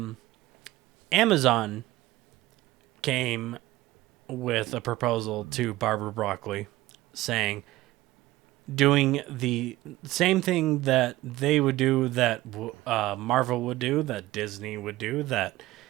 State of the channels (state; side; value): quieter; left; 17.2 dB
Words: Amazon came with a proposal to Barbara Broccoli saying, doing the same thing that they would do, that Marvel would do, that Disney would do, that